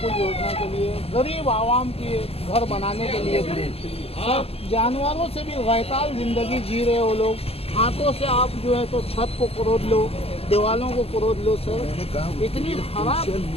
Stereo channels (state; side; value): late; right; 0.29 ms